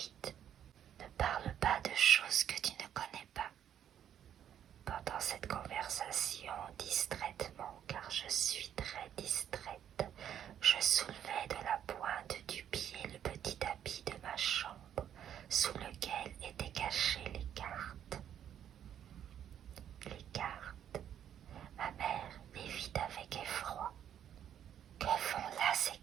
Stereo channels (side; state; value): left; quieter; 9.9 dB